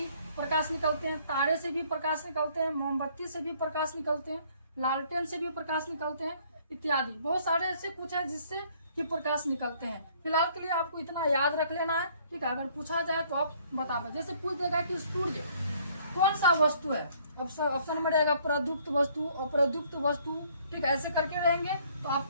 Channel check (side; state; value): both; inverted; correlation -0.61